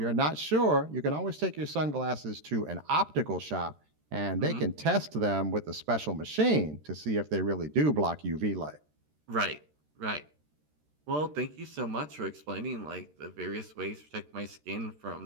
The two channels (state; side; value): late; left; 13 ms